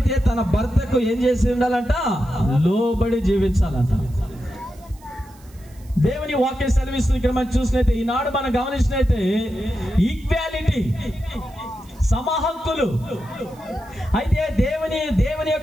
తన భర్తకు ఏం చేసి ఉండాలంట? లోబడి జీవించాలంట. దేవుని వాక్యం సెలవిస్తుంది ఇక్కడ మనం చూసినైతే, ఈనాడు మనం గమనించినైతే ఈక్వాలిటీ, సమహక్కులు. అయితే దేవుని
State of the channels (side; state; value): right; noise; hiss, 27 dB below the sound